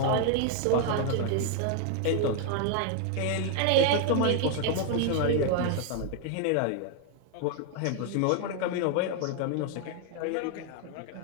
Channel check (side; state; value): both; different; correlation 0.00